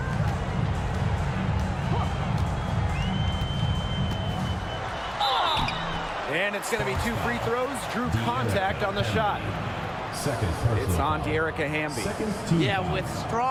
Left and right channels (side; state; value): both; identical; correlation 1.00